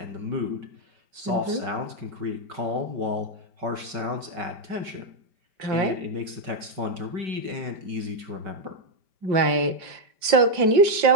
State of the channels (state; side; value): late; left; 5.1 ms